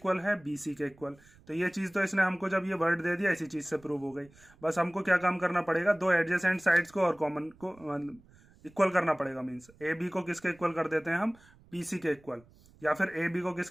है, BC के इक्वल। तो ये चीज तो इसने हमको जब ये वर्ड दे दिया इसी चीज से प्रूव हो गई। बस हमको क्या काम करना पड़ेगा, दो एडजेसेंट साइड्स को और कॉमन को इक्वल करना पड़ेगा। मीन्स AB को किसके इक्वल कर देते हैं हम, BC के इक्वल, या फिर AB को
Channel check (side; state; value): right; noise; rumble, 27 dB below the sound